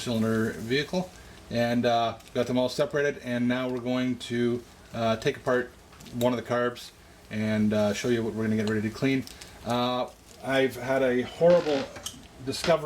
vehicle, and got them all separated, and now we're going to take apart one of the carbs and show you what we're going to get ready to clean. I've had a horrible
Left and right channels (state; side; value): identical; both; correlation 1.00